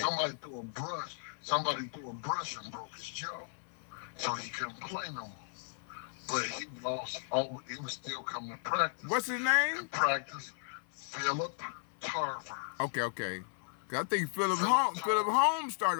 Somebody threw a brush and broke his jaw. So he couldn't play no more. But he lost he was still coming to practice. What's his name? In practice, Philip Tarver. Okay. 'Cause I think Philip Holmes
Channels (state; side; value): silent; right; 54 dB below the other